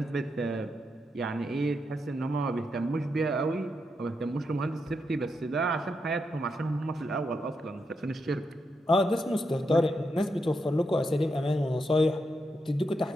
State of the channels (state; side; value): normal; both; correlation 0.83